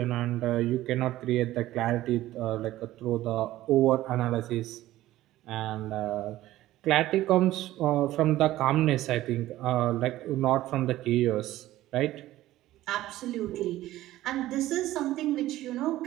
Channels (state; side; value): quieter; left; 15.3 dB